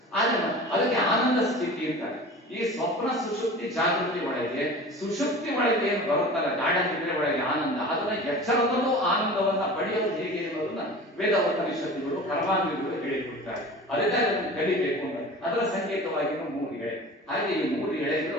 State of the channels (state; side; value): normal; both; correlation 0.37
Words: ಆದ್ರೆ ಅದಕ್ಕೆ ಆನಂದ ಸ್ಥಿತಿ ಅಂತಾರೆ. ಈ ಸ್ವಪ್ನ ಸುಷುಪ್ತಿ ಜಾಗೃತಿ ಒಳಗೆ, ಸುಷುಪ್ತಿ ಒಳಗೆ ಏನು ಬರುತ್ತಲ್ಲ ಗಾಢ ನಿದ್ರೆ ಒಳಗೆ ಆನಂದ, ಅದನ್ನ ಎಚ್ಚರದಲ್ಲೂ ಆನಂದವನ್ನ ಪಡೆಯೋದು ಹೇಗೆ ಅನ್ನೋದನ್ನ ವೇದ ಉಪನಿಷತ್ತುಗಳು, ಕರ್ಮಾಂಗಗಳು ಹೇಳಿಕೊಡ್ತಾರೆ. ಅದಕ್ಕೆ ಅದನ್ನು ಕಲಿಬೇಕು ಅಂತ. ಅದರ ಸಂಕೇತವಾಗಿ 3 ಎಳೆ. ಹಾಗೆ ಈ 3